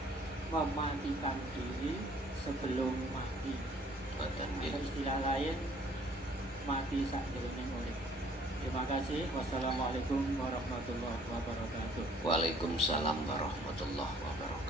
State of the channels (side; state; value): both; normal; correlation 0.57